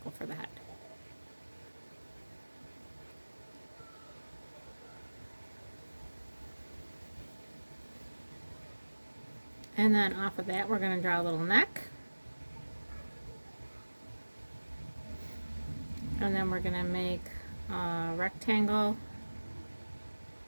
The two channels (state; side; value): inverted; both; correlation -1.00